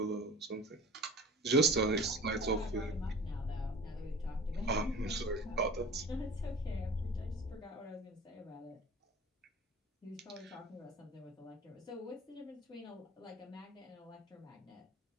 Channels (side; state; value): both; normal; correlation 0.41